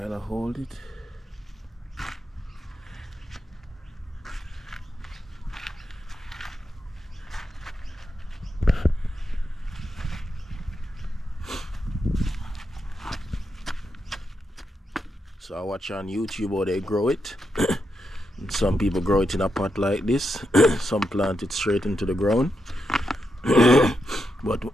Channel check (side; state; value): both; normal; correlation 0.84